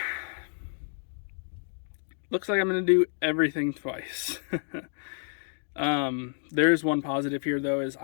looks like I'm gonna do everything twice. There's one positive here though, is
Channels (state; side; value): silent; right; digital silence